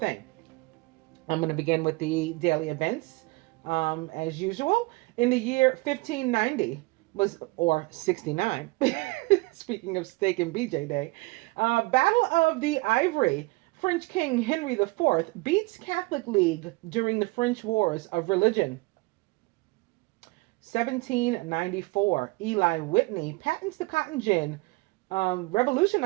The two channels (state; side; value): quieter; left; 24.6 dB